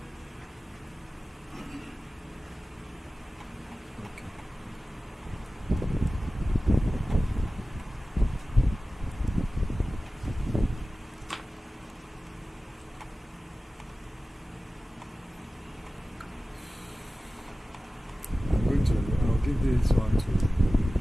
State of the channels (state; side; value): normal; both; correlation 0.96